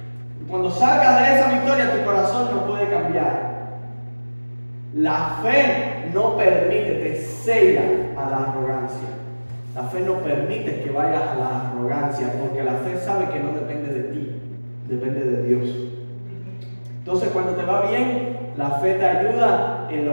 Y cuando salgas de esa victoria, tu corazón no puede cambiar. La fe no permite, te cega a la arrogancia. La fe no permite que vayas a la arrogancia, porque la fe sabe que no depende de ti, depende de Dios. Entonces, cuando te va bien, la fe te ayuda en la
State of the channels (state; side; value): inverted; both; correlation -1.00